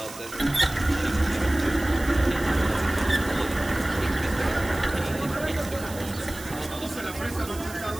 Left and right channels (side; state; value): right; noise; hiss, 15 dB below the sound